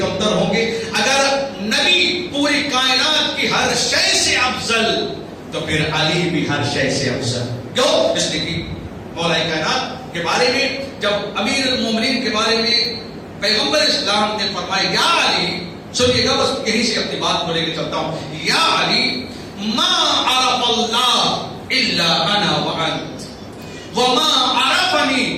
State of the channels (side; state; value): both; identical; correlation 1.00